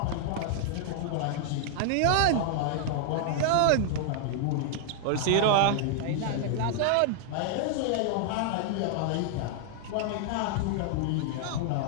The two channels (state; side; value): different; both; correlation -0.01